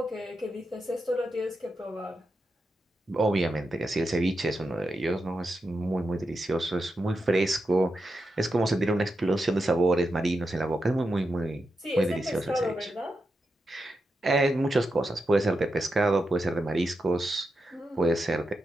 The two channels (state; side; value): normal; both; correlation 0.88